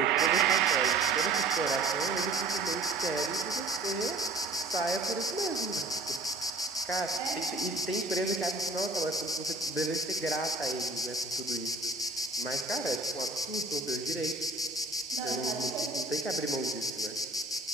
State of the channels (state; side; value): quieter; left; 3.1 dB